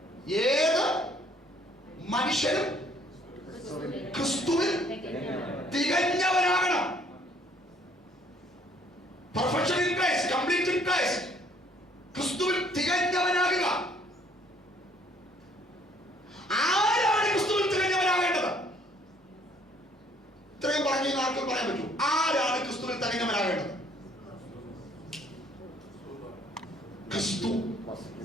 ഏത് മനുഷ്യനും ക്രിസ്തുവിൽ തികഞ്ഞവനാകണം. Perfection in Christ, complete in Christ. ക്രിസ്തുവിൽ തികഞ്ഞവനാകുക. ആരാണ് ക്രിസ്തുവിൽ തികഞ്ഞവനാകേണ്ടത്? ഇത്രയും പറഞ്ഞു ആർക്കും പറയാൻ പറ്റൂ. ആരാണ് ക്രിസ്തുവിൽ തികഞ്ഞവനാകേണ്ടത്? ക്രിസ്തു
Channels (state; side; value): normal; both; correlation 0.62